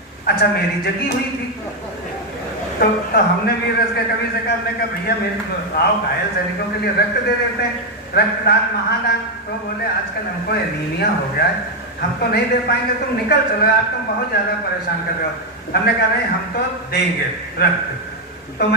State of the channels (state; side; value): normal; both; correlation 0.04